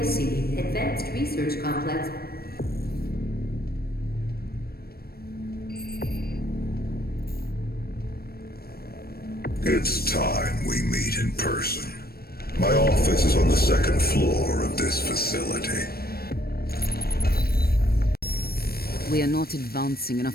Advanced Research Complex. It's time we meet in person. My office is on the second floor of this facility. We are not advancing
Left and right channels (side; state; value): right; late; 0.44 ms